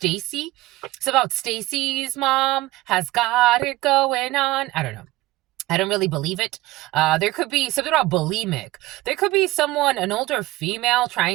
It's about Stacy's mom has got it going on. I don't know. I don't really believe it. There could be something about bulimic. There could be someone, an older female,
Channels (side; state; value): left; quieter; 18.4 dB